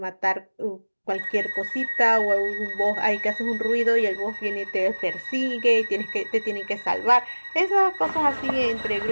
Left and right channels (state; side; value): inverted; both; correlation -1.00